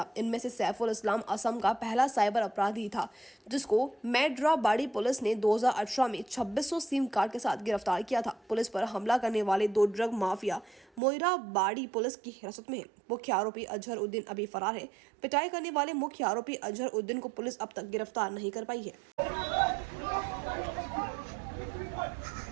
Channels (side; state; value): left; drops out; at 11.0 s